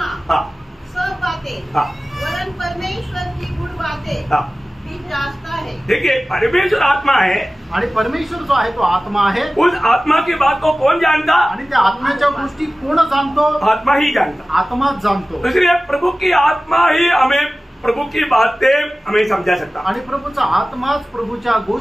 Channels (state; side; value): normal; both; correlation 0.96